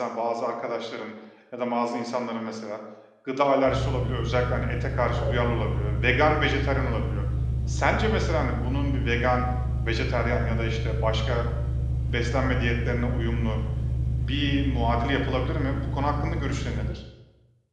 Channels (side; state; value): both; identical; correlation 1.00